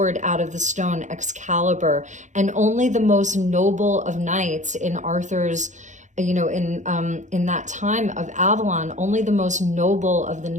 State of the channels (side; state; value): left; late; 0.35 ms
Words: out of the stone, Excalibur. And only the most noble of knights in Arthur's, in that time of Avalon, only the most noble of the